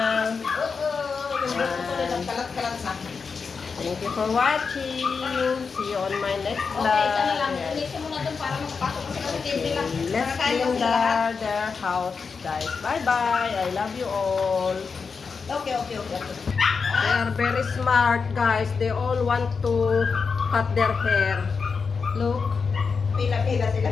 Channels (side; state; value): right; quieter; 5.2 dB